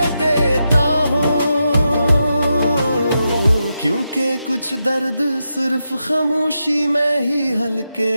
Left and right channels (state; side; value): inverted; both; correlation -0.86